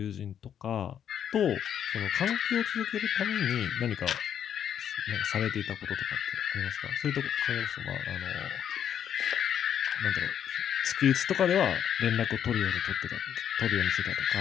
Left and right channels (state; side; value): quieter; right; 9.2 dB